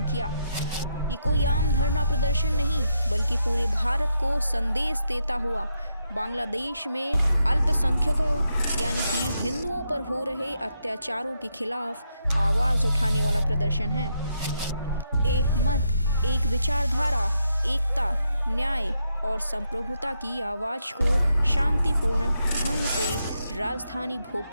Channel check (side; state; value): both; inverted; correlation -0.81